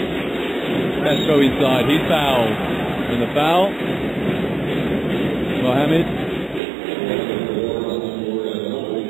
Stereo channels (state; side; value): drops out; left; at 6.6 s